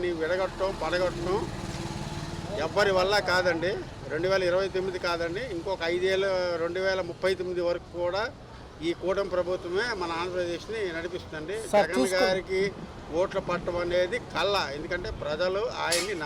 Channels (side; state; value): both; identical; correlation 1.00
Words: పడగొట్టడం ఎవ్వరి వల్ల కాదండి. 2029 కాదండి, ఇంకొక 5 ఏళ్ళు 2039 వరకు కూడా ఈ కూటమి ప్రభుత్వమే మన ఆంధ్రప్రదేశ్ని నడిపిస్తుంది. జగన్ గారికి ఓట్ల పట్టడం అనేది కళ్ళ, ఎందుకంటే ప్రజలు ఆయన్ని